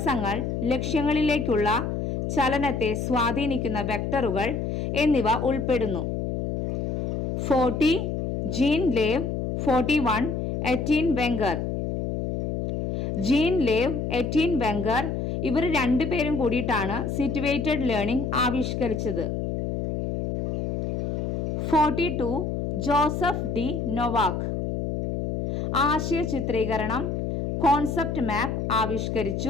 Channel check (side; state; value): left; noise; hum, 2 dB below the sound